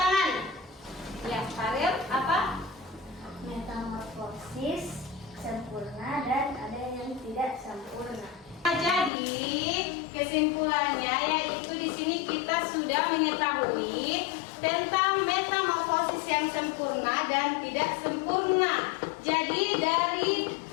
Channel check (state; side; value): drops out; right; at 9.1 s